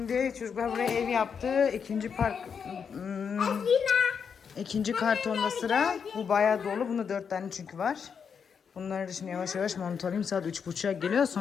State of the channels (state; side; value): quieter; right; 6.6 dB